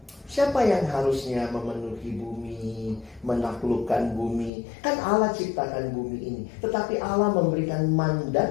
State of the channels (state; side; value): drops out; right; at 4.5 s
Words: Siapa yang harusnya memenuhi bumi, menaklukkan bumi? Kan Allah ciptakan bumi ini. Tetapi Allah memberikan